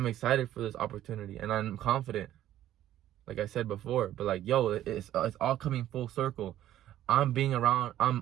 excited for this opportunity and I'm confident, like I said before. But like, yo, it's all coming full circle. I'm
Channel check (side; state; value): left; quieter; 12.7 dB